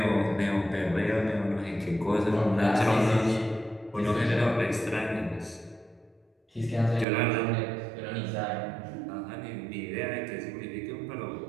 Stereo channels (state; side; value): drops out; left; at 7.1 s